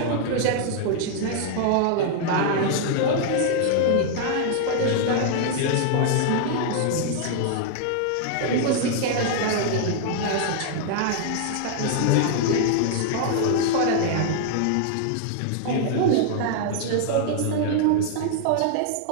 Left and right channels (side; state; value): both; different; correlation 0.00